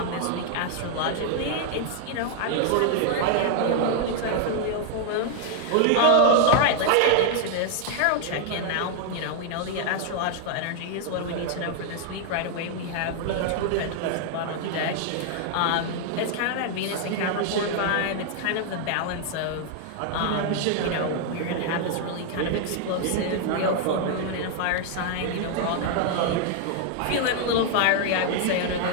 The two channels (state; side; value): different; both; correlation 0.00